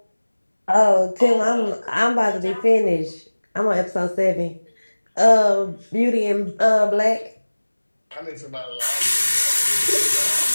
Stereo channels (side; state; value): both; inverted; correlation -1.00